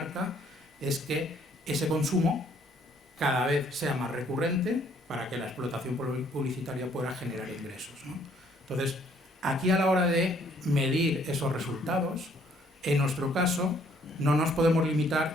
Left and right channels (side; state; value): both; normal; correlation 0.64